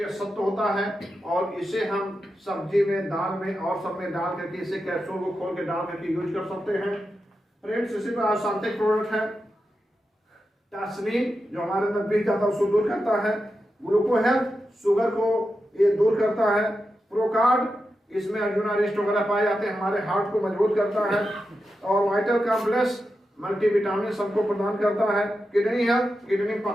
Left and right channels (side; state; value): both; normal; correlation 0.89